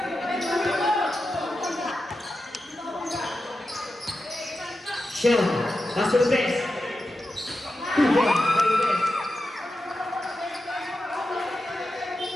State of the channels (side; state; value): both; normal; correlation 0.90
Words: Sean, pass to the best. 2 points for the best.